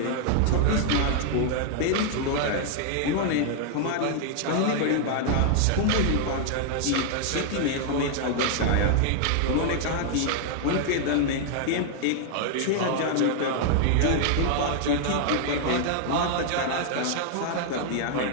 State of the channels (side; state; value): both; different; correlation 0.00